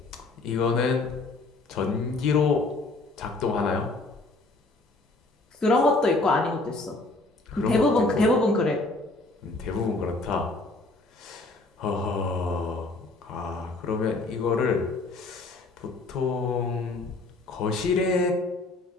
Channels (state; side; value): quieter; right; 3.2 dB